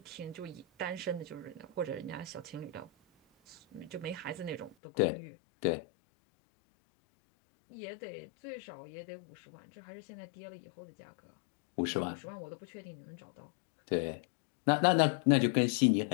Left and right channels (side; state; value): right; drops out; at 4.8 s